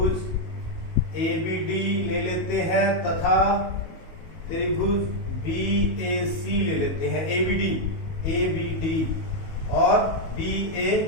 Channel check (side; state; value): right; late; 19 ms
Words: ABD ले लेते हैं तथा त्रिभुज BAC ले लेते हैं। ABD और